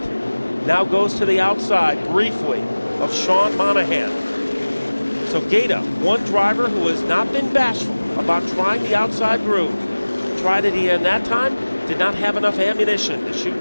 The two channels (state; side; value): inverted; both; correlation -1.00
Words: Now goes to the outside briefly of Sean Monahan. So Gaeta, one driver who has not been bashful about trying the outside groove. Tried it again that time, did not have enough ammunition to